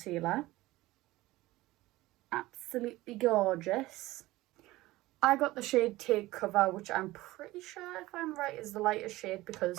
Absolutely gorgeous. I got the shade Take Cover, which I'm pretty sure, if I'm right, is the lightest shade because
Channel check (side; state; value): left; quieter; 18.3 dB